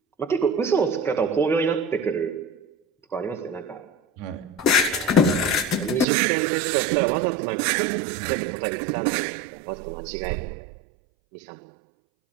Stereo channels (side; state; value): left; drops out; at 6.1 s